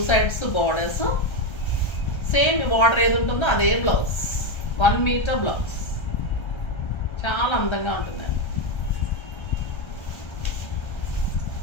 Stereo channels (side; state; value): right; late; 1.3 ms